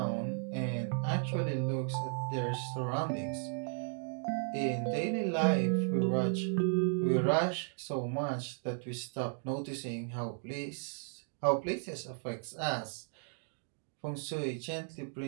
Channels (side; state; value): left; silent; 54 dB below the other